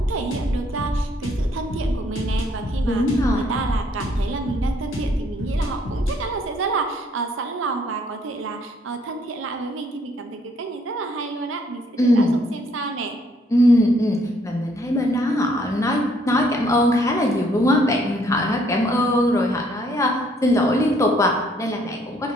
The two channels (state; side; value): normal; both; correlation 0.66